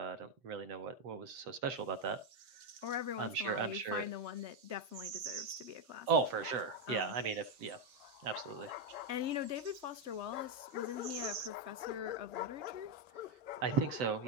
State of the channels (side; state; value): left; late; 7.8 ms